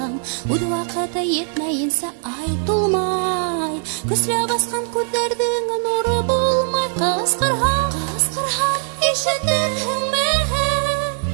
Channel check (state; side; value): silent; left; 66 dB below the other